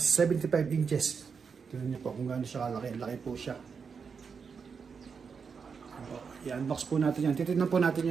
inches. Tignan niyo po kung gaano siya kalaki. Laki po siya. I-unbox po natin yan. Titignan po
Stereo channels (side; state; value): left; quieter; 5.9 dB